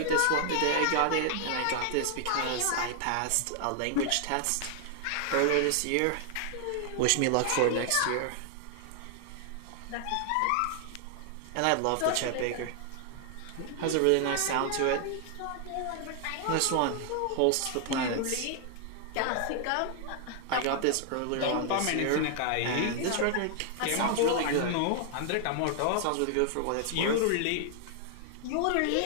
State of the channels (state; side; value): different; both; correlation 0.00